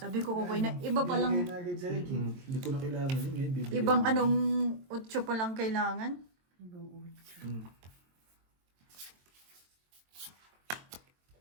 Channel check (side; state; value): left; late; 22 ms